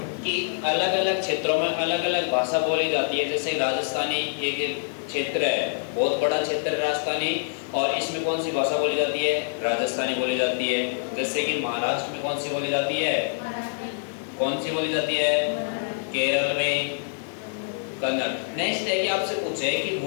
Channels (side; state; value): right; silent; digital silence